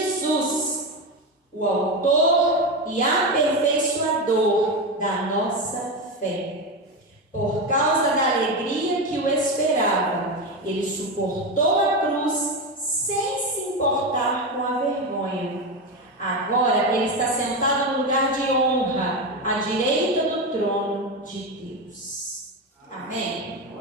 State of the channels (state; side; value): normal; both; correlation 0.16